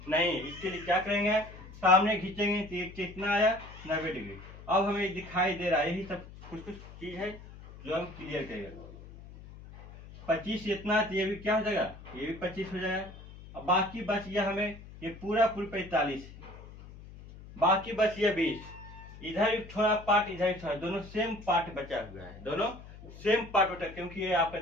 नहीं। इसके लिए क्या करेंगे, सामने खींचेंगे तो कितना आया 90 डिग्री। अब हमें दिखाई दे रहा है, यही सब कुछ चीज है जो हम क्लियर करेंगे। 25 इतना है तो ये भी क्या हो जाएगा, ये भी 25 हो जाएगा। अब बाकी बच गया हमें ये पूरा 45 है, बाकी बच गया 20। इधर भी थोड़ा पार्ट, इधर भी थोड़ा, दोनों सेम पार्ट बचा हुआ है, दोनों सेम पार्ट बचा, क्योंकि ये आपका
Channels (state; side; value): noise; left; hum, 17 dB below the sound